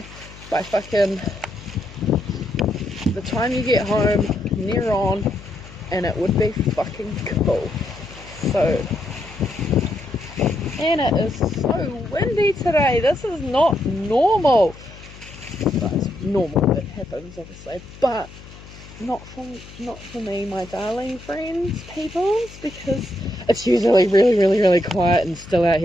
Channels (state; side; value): noise; left; hum, 18 dB below the sound